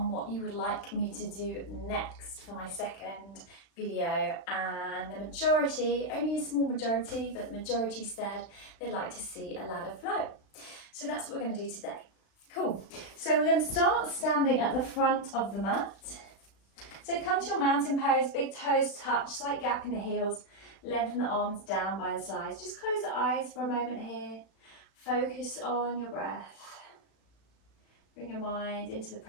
what you would like me to do next for my second video, and the majority, only a small majority, but the majority said they'd like to see a ladder flow. So that's what we're going to do today. Cool. So we're going to start standing at the front of the mat. So come to your mountain pose, big toes touch, slight gap in the heels, lengthen the arms down by the sides. Just close the eyes for a moment here. Focus on your breath. Bring your mind into the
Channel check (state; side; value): late; right; 36 ms